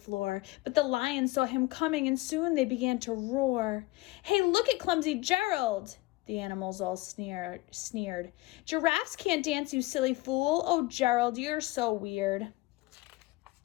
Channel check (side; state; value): right; quieter; 20.0 dB